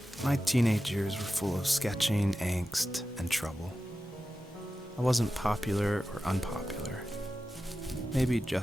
My teenage years were full of sketching, angst, and trouble. I wasn't popular or unpopular. Maybe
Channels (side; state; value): both; normal; correlation 0.93